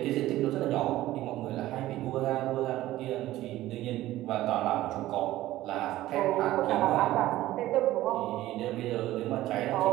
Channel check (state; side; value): quieter; left; 15.5 dB